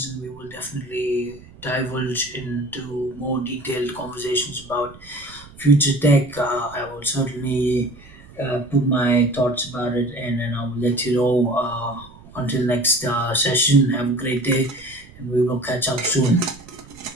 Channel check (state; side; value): noise; right; rumble, 21 dB below the sound